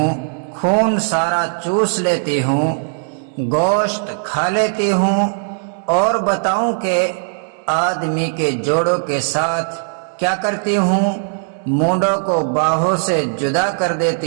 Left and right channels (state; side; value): silent; left; digital silence